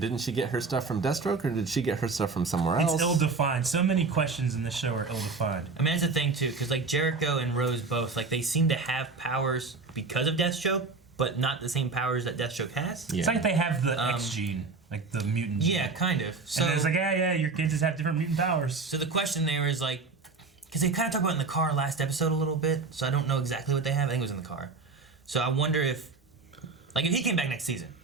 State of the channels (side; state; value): left; quieter; 4.2 dB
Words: didn't she get her stuff from Deathstroke, or did she get her stuff from somewhere else? It's ill-defined. So many questions in this show are ill-defined. I mean, that's the thing too, because like Jericho and Rose both, like they seem to have powers because of Deathstroke, but not the same powers that Deathstroke has. It's like they have the X gene, like the mutant gene. Yeah, kind of. So And it's like, yeah, your kids just have different mutant powers. So the question there is like, because they kind of talked about it in the car last episode a little bit, so I don't know exactly what they have. I think it was in the car. So I wonder if he came back next season,